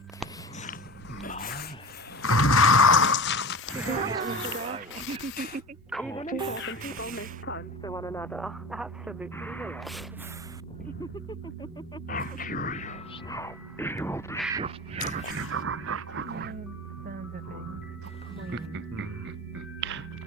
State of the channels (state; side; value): normal; both; correlation 0.31